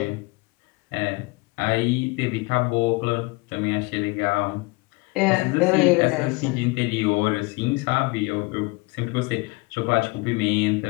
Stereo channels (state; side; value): quieter; right; 25.4 dB